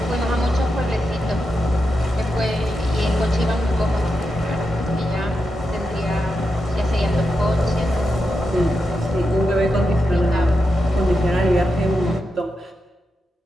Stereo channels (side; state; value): both; normal; correlation 0.87